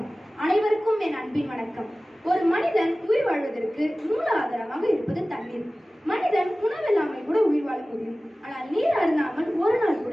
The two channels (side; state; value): both; normal; correlation 0.97